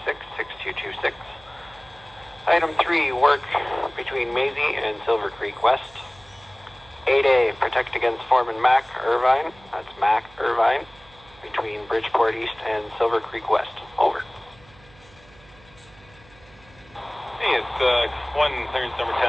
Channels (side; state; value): right; noise; hum, 25 dB below the sound